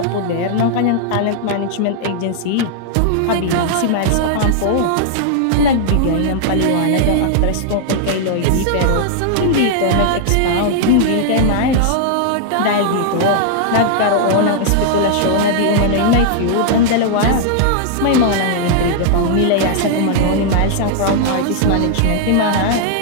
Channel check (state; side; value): different; both; correlation -0.01